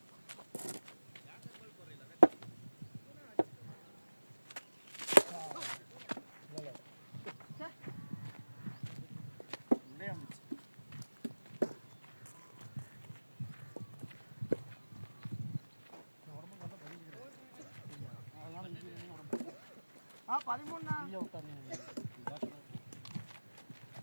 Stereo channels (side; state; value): both; inverted; correlation -1.00